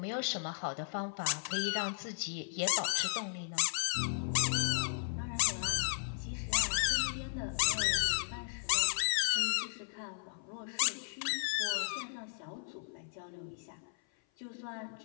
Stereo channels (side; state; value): right; silent; 54 dB below the other